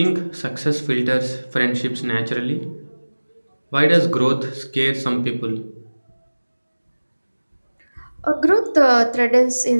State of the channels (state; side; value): inverted; both; correlation -1.00